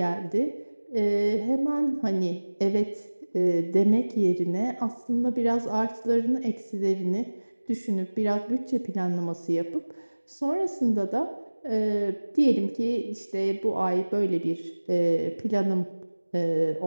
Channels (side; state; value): both; inverted; correlation -1.00